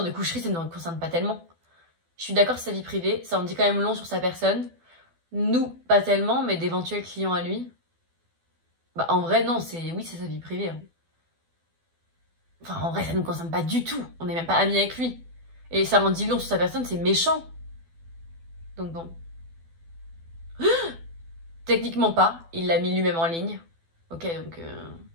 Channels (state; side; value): late; left; 12 ms